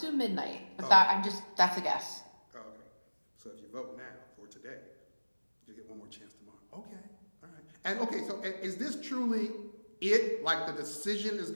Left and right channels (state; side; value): inverted; both; correlation -1.00